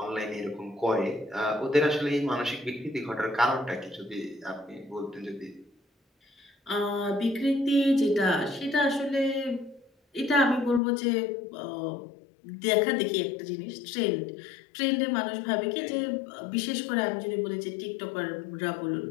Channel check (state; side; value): drops out; right; at 10.8 s